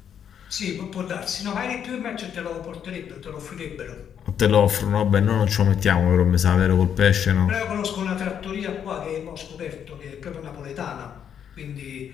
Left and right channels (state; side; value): quieter; right; 8.6 dB